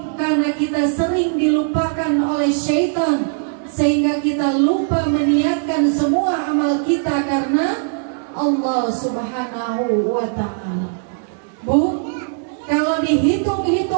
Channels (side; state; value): left; silent; digital silence